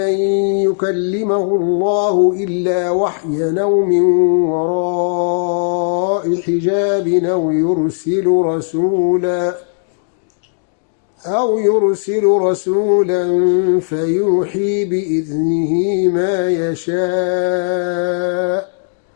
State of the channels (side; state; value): right; silent; digital silence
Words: يكلمه الله إلا وحيا أو من وراء حجاب أو يرسل رسولا فيوحي بإذنه ما يشاء